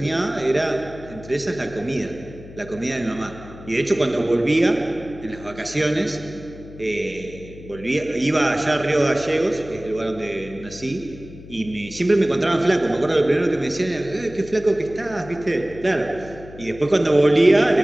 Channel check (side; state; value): left; noise; hum, 17 dB below the sound